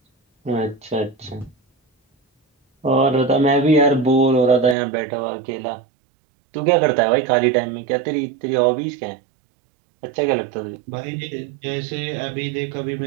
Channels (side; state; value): left; drops out; at 4.8 s